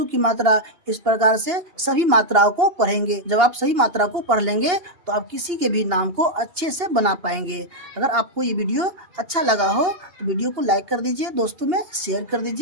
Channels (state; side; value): late; left; 2.8 ms